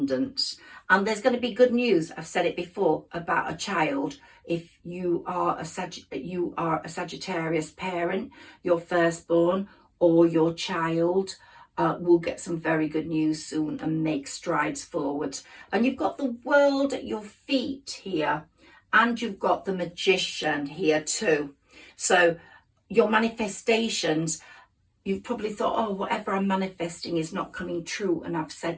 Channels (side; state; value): both; identical; correlation 1.00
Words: and there's going to be good news. I've said it before about a child. If you are a Sagittarius parent, your firstborn or your child will get some very good news soon and make strides forward. And you've got the world at your feet here, and you've got the Magician here too. So your manifestations, you've probably thought, oh, whatever I'm manifesting is not coming true. And I've said